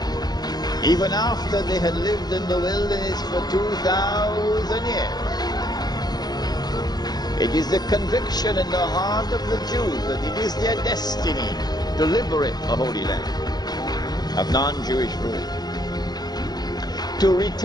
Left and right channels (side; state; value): right; late; 0.19 ms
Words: Even after they had lived in the wilderness for 2,000 years. It is the conviction in the heart of the Jews that it is their destiny to liberate the Holy Land of non-Jewish rule. To